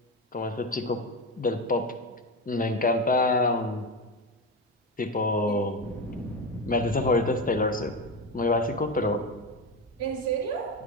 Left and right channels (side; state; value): both; normal; correlation 0.18